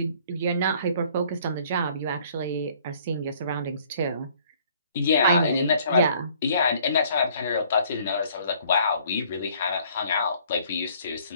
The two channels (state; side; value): inverted; both; correlation -0.58